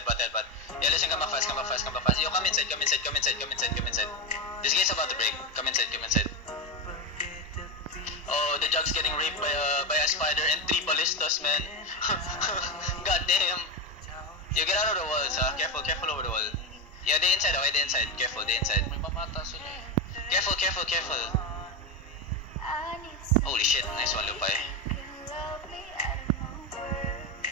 listen, come back fast. Yo, come inside. This gate's about to break, come inside. Oh, the jug's getting raped by a spider and 3 ballistas, man. God damn. Yo, get out of the walls, careful over the wall. Yeah, they inside. Careful, they inside. May mamata sila eh. Careful. Holy shit, nice one, Lupay.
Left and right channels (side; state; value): both; normal; correlation 0.12